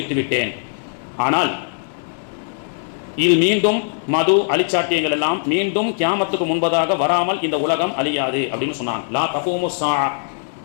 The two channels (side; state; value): right; silent; digital silence